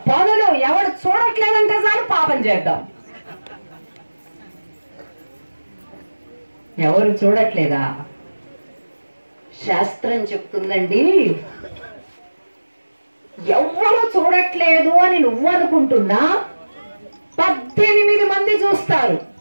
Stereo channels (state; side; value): inverted; both; correlation -1.00